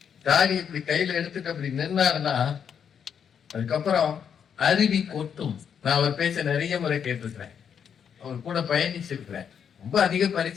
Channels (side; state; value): right; quieter; 7.7 dB